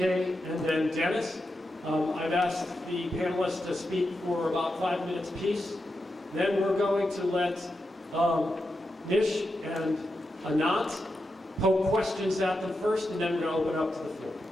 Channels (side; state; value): both; normal; correlation 0.88